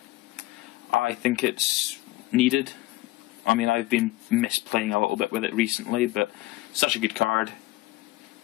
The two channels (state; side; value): quieter; right; 18.2 dB